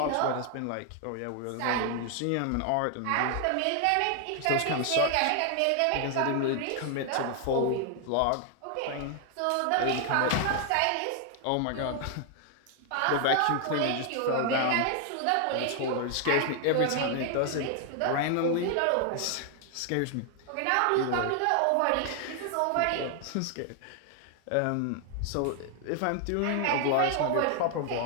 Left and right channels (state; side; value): different; both; correlation 0.00